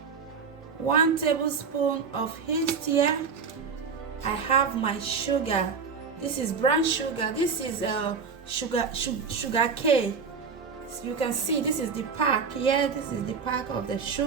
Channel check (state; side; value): quieter; left; 5.6 dB